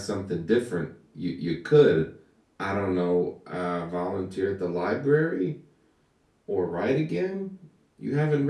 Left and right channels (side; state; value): both; identical; correlation 1.00